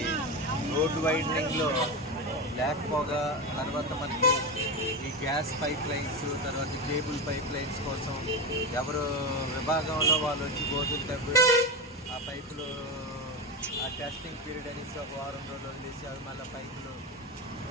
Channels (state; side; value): normal; both; correlation 0.18